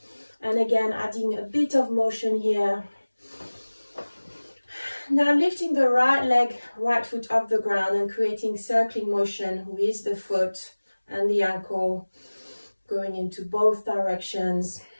and again adding a bit of motion here. Now lifting the right leg, right foot off the ground and creating circling motion with the foot and the ankle going into both directions.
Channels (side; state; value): both; inverted; correlation -1.00